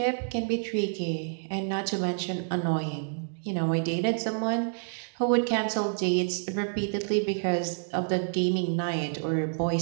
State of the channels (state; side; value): silent; left; digital silence